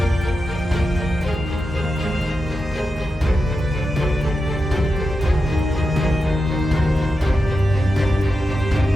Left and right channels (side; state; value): both; normal; correlation 0.89